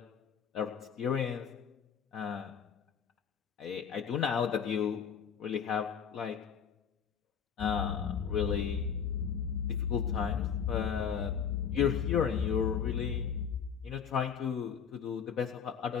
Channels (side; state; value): right; quieter; 7.4 dB